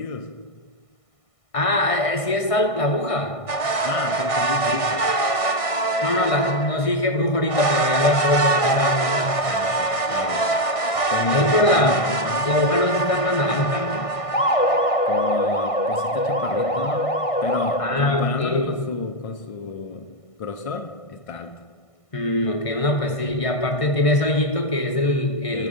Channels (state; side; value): late; right; 1.6 ms